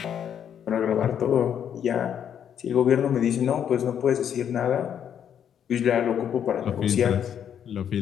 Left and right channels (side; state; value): right; quieter; 8.9 dB